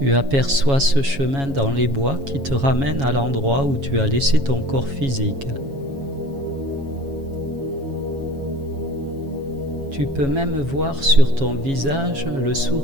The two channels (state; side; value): late; left; 7.3 ms